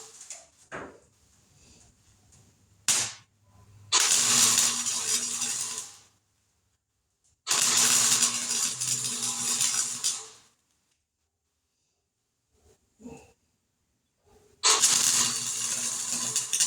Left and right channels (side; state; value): both; identical; correlation 1.00